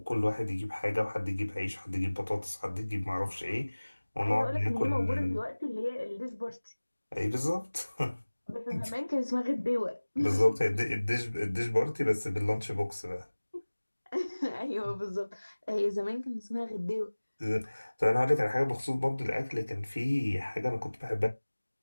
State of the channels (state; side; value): inverted; both; correlation -1.00